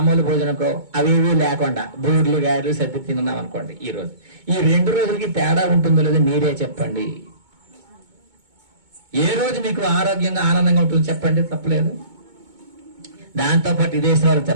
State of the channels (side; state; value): left; late; 2.2 ms